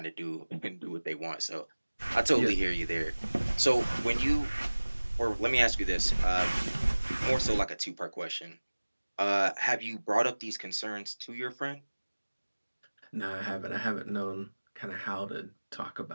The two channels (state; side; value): inverted; both; correlation -1.00